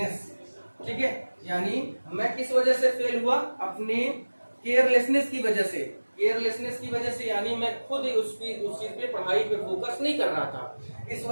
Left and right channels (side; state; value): both; inverted; correlation -1.00